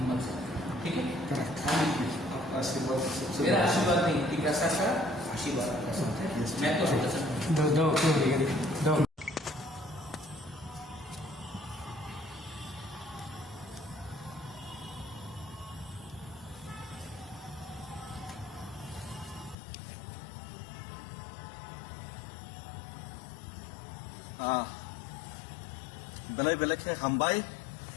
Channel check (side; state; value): right; drops out; at 19.6 s